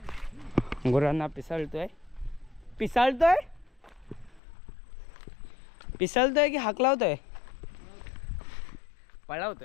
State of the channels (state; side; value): drops out; right; at 4.4 s